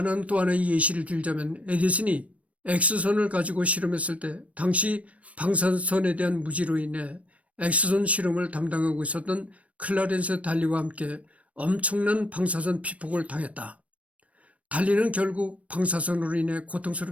또 하나의 예시를 들자면 에디슨이 X선을 가지고 실험했을 때 당시 방사선에 대한 무지로 인해 X선 실험을 담당하고 있었던 클라렌스 달리와 함께 엄청난 방사선 피폭을 당했다. 달리는 결국 방사선으로 인해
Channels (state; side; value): late; left; 0.065 ms